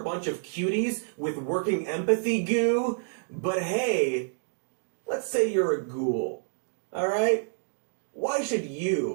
a bunch of cuties with working empathy goo. But hey, let's say you're a ghoul, alright? Why should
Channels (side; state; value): left; silent; digital silence